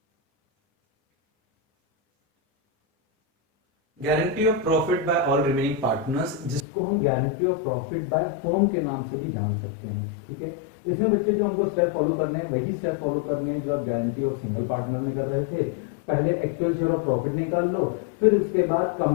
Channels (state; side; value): drops out; right; at 6.7 s